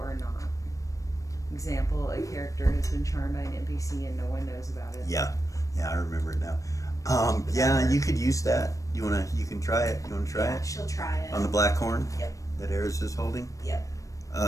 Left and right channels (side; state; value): right; late; 0.16 ms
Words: not. Example, a character has been charmed by an NPC and no one knows about it. Yeah, I remember it now. Yeah, you could use that. You can try it. You wanna try Yeah, it? she'll try it. On the black horn Yep. that Eris is holding? Yep.